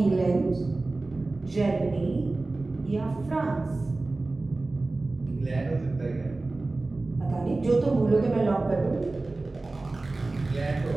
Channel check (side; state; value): left; quieter; 3.2 dB